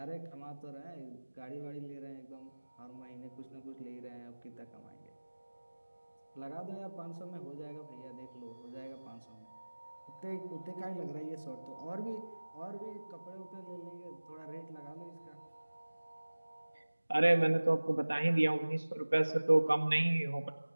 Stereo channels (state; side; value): inverted; both; correlation -1.00